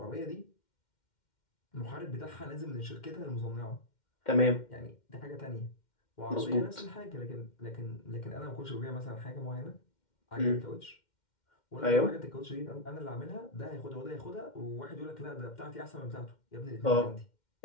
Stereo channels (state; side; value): late; right; 2.1 ms